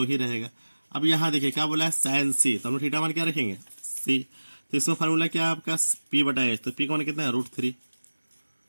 ही रहेगा। अब यहाँ देखिए क्या बोला है साइन सी, तो हम लोग थीटा मान क्या रखेंगे सी, तो इसमें फार्मूला क्या है आपका पी बटा एच, तो पी का मान कितना है √3,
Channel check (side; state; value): both; inverted; correlation -1.00